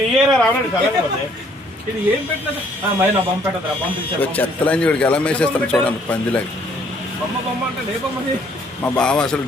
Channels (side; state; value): both; normal; correlation 0.63